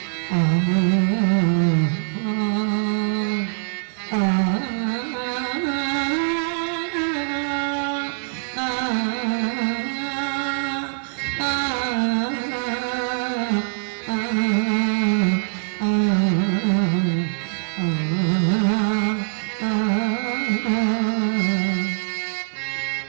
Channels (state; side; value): silent; left; digital silence